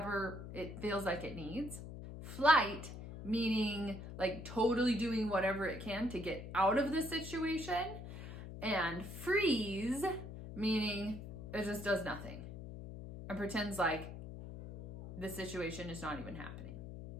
it feels like it needs. Flight, meaning like totally doing whatever it can to get out of the situation. And freeze, meaning it just does nothing and pretends like the situation is not even happening.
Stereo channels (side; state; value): left; noise; hum, 10 dB below the sound